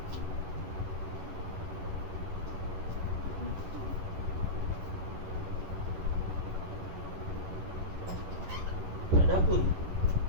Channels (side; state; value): left; late; 11 ms